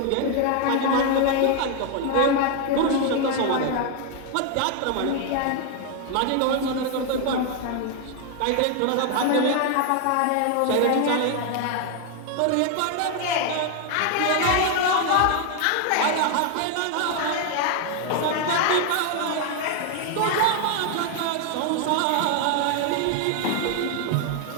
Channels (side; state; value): both; different; correlation 0.01